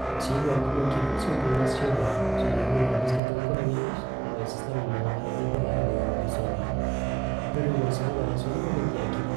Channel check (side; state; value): left; drops out; at 3.2 s